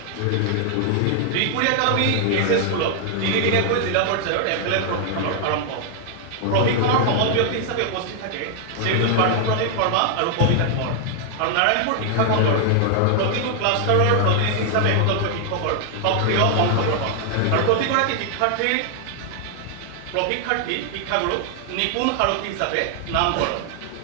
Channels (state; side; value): different; both; correlation 0.00